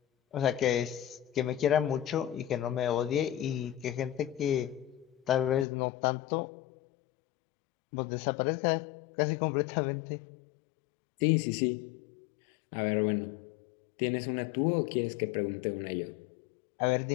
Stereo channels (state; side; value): drops out; right; at 5.7 s